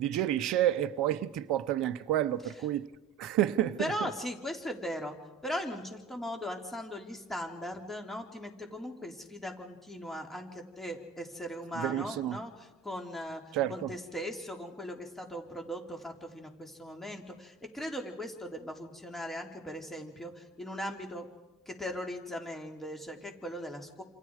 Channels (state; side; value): quieter; left; 5.8 dB